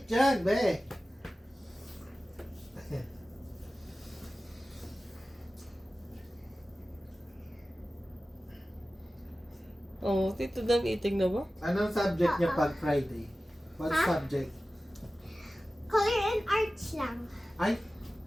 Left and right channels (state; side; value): normal; both; correlation 0.96